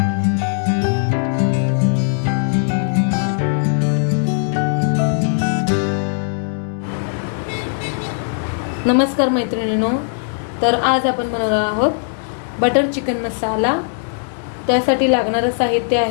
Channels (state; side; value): silent; right; 67 dB below the other